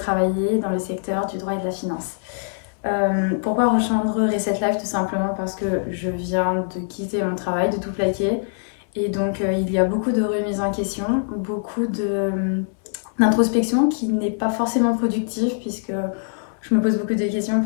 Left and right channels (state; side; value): silent; right; 64 dB below the other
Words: dans le secteur du droit et de la finance. Pourquoi rejoindre Reset Life? Tout simplement parce que je viens de quitter mon travail, de tout plaquer. Et donc il y a beaucoup de remises en question, d'introspection qui n'est pas forcément productive puisque je me pose beaucoup de questions